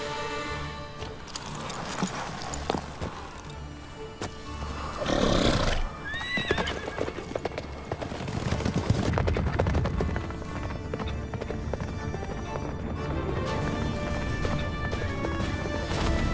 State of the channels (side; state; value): both; identical; correlation 1.00